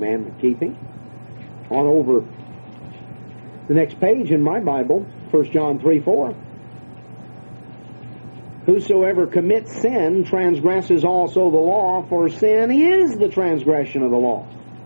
keeping. On over the next page in my Bible, 1 John 3:4. Whosoever commits sin transgresses also the law, for sin is the transgression of the law.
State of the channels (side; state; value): both; inverted; correlation -1.00